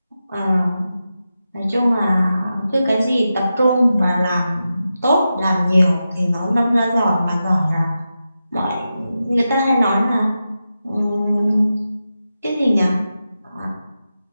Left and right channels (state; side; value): inverted; both; correlation -0.90